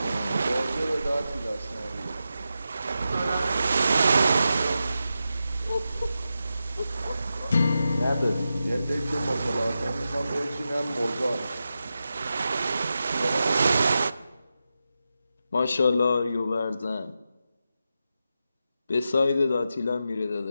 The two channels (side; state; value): both; inverted; correlation -0.89